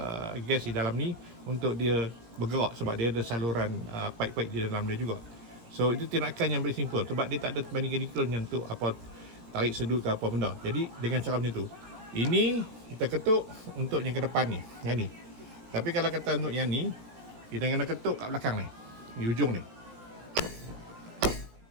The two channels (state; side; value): late; left; 17 ms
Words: gas di dalam ni untuk dia bergerak, sebab dia ada saluran pipe-pipe di dalam dia juga. So itu tindakan yang very simple, sebab dia tak ada mechanical yang untuk tarik sedut ke apa benda. Jadi dengan cara macam tu, ini kita ketuk untuk yang ke depan ni, yang ni. Tapi kalau kata untuk yang ni, kita kena ketuk kat belakang ni, di ujung ni.